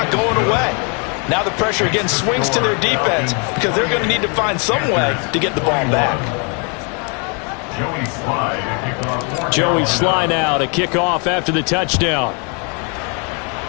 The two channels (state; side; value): quieter; right; 36.0 dB